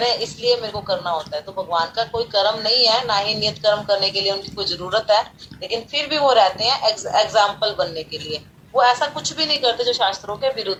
हैं इसलिए मेरे को करना होता है। तो भगवान का कोई कर्म नहीं है, ना ही नियत कर्म करने के लिए उनकी कोई जरूरत है, लेकिन फिर भी वो रहते हैं एग्जाम्पल बनने के लिए। वो ऐसा कुछ भी नहीं करते जो शास्त्रों के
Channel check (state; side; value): identical; both; correlation 1.00